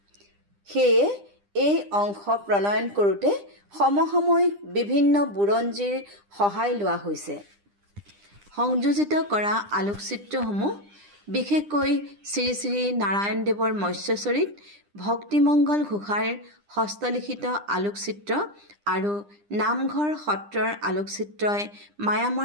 সেয়ে এই অংশ প্ৰণয়ন কৰোঁতে সমসাময়িক বিভিন্ন বুৰঞ্জীৰ সহায় লোৱা হৈছে। সংযোজিত কৰা আলোকচিত্ৰসমূহ বিশেষকৈ শ্ৰী শ্ৰী নাৰায়ণদেৱৰ মৎস্যচৰিত, ভক্তিমংগল ঘোষাৰ হস্তলিখিত আলোকচিত্ৰ আৰু নামঘৰ সত্ৰৰ আলোকচিত্ৰই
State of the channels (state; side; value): late; left; 9.9 ms